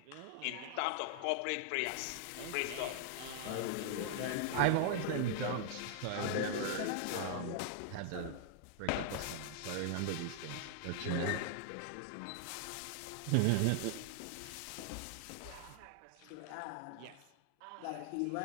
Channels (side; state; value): both; different; correlation 0.00